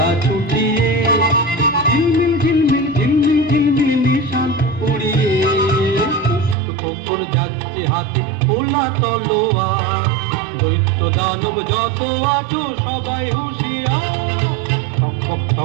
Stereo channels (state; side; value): drops out; left; at 6.6 s